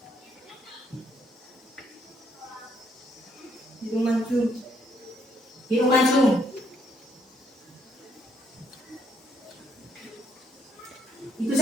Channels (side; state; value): both; normal; correlation 0.71